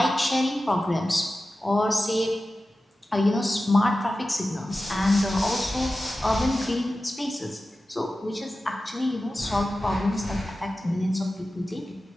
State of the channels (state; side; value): normal; both; correlation 0.94